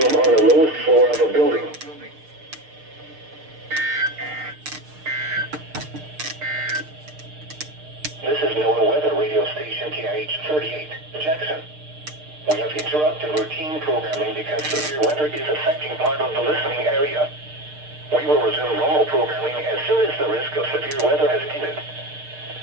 on the lowest floor of a building. This is NOAA weather radio station KIH38, Jackson. We have interrupted routine programming because severe weather is affecting part of the listening area. We will resume normal programming as soon as the risk of severe weather has ended.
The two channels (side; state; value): left; late; 6.6 ms